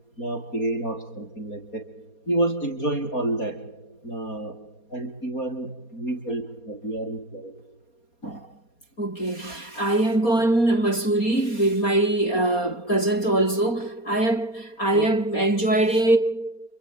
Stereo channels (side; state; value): right; late; 4.2 ms